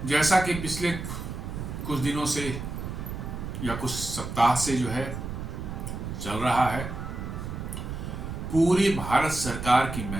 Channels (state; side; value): noise; right; rumble, 6 dB below the sound